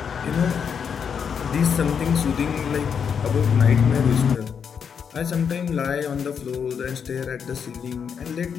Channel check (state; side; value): quieter; right; 7.0 dB